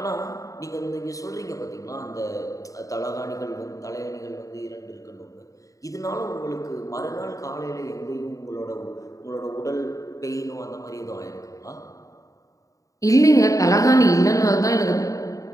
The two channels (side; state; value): right; late; 0.16 ms